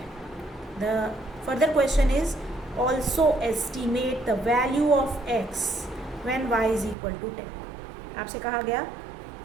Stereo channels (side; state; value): left; drops out; at 7.0 s